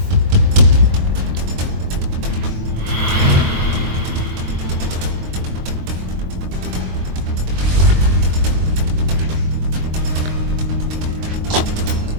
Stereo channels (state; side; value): late; left; 23 ms